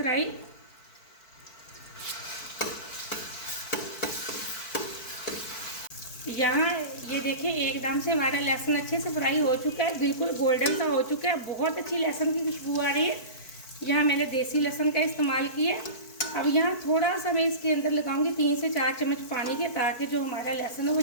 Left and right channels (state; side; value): late; right; 4.5 ms